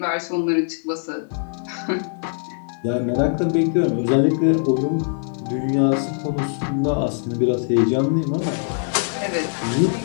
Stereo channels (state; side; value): silent; right; digital silence